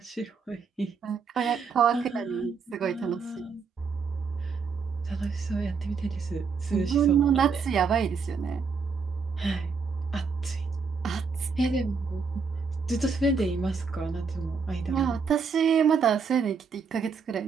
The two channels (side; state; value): left; quieter; 5.3 dB